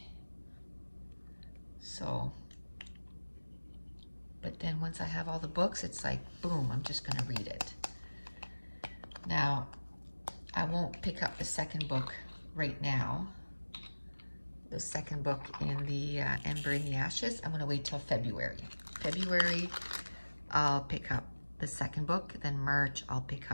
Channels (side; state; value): both; inverted; correlation -1.00